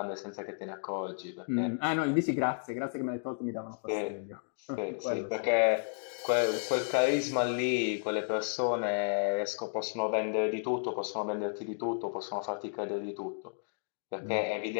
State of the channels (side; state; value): right; silent; 56 dB below the other